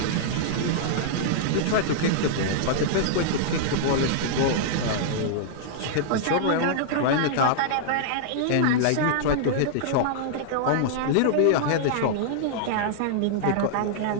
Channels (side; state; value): both; different; correlation -0.02